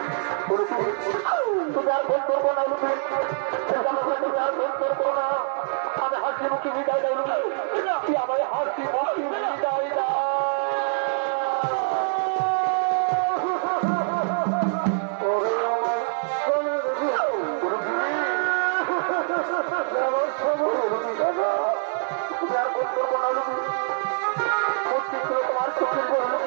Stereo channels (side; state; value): left; silent; 61 dB below the other